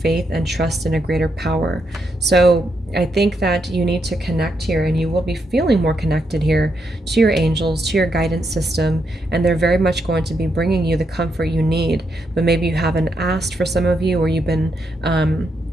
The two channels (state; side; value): normal; both; correlation 0.81